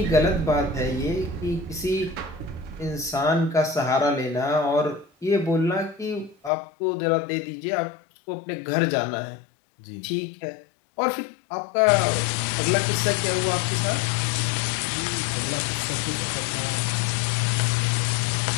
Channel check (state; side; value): drops out; right; at 6.5 s